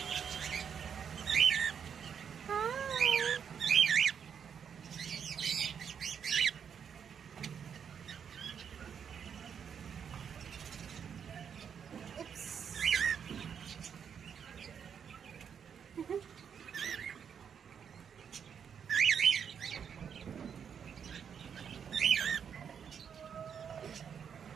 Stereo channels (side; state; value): left; quieter; 7.5 dB